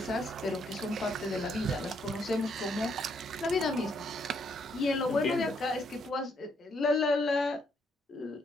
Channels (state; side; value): normal; both; correlation 0.73